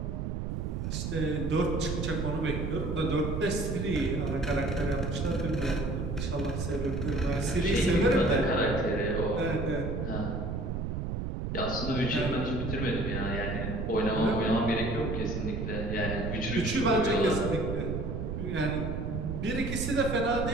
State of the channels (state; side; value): noise; right; rumble, 2 dB below the sound